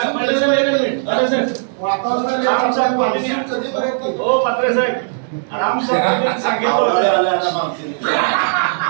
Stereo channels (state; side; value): silent; left; digital silence